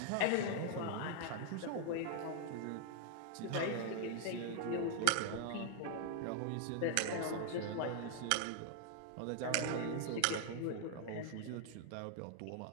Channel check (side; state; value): both; different; correlation 0.00